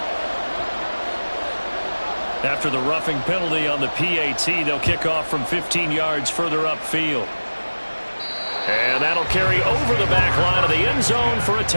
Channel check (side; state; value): both; inverted; correlation -1.00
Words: After the roughing penalty on the PAT, they'll kick off from 15 yards further upfield. And that'll carry over the back line of the end zone for a